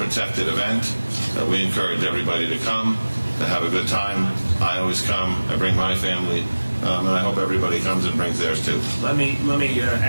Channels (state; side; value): inverted; both; correlation -1.00